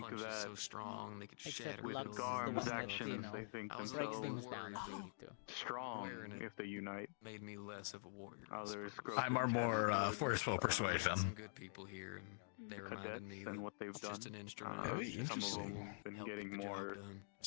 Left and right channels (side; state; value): right; silent; digital silence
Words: punches that so strong they could Except shatter with Lux is the Garm's one that, actions, you know, they think breaks themselves things down if they need to. strong if they unite. made me less of a warrior. Others grow I'm our more forceful Some persuasion. good people here, and they the reminded cadets me and that what they've it's done. just an instrument. Very Some of them interesting. have been Help getting get the job more done.